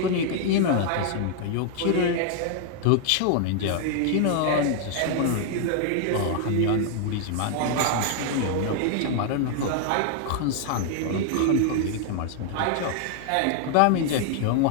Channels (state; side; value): different; both; correlation 0.00